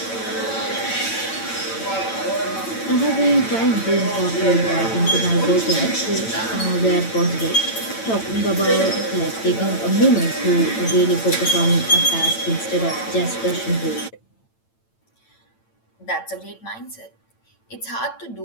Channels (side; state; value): right; late; 8.9 ms